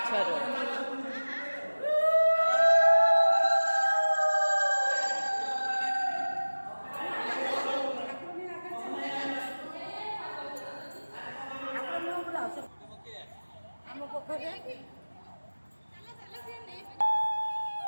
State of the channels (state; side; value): inverted; both; correlation -1.00